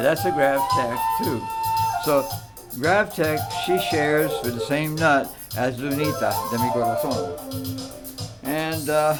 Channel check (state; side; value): identical; both; correlation 1.00